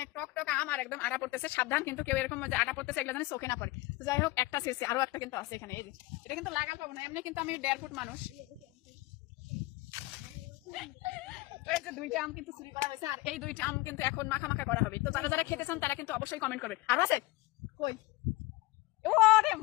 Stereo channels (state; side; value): quieter; right; 20.2 dB